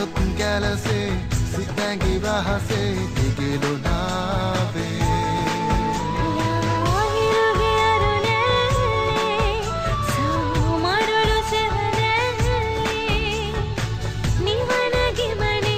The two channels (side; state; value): both; identical; correlation 1.00